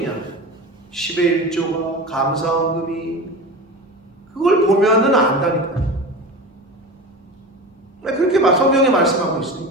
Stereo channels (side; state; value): both; normal; correlation 0.29